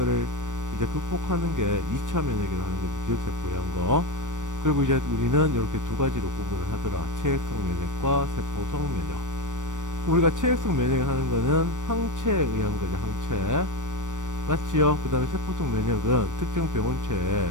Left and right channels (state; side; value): late; left; 0.87 ms